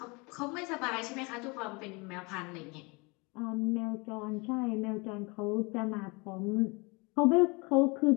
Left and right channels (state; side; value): quieter; right; 27.9 dB